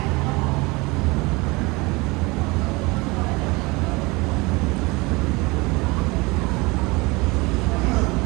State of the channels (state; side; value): quieter; left; 24.7 dB